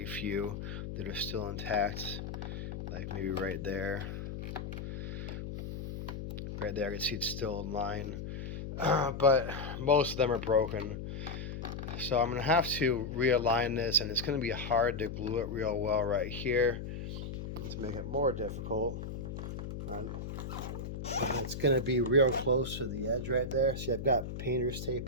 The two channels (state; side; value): noise; left; hum, 6 dB below the sound